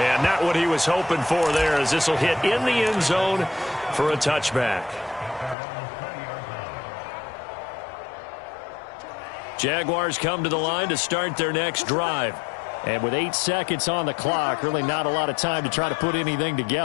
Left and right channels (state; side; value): drops out; right; at 5.6 s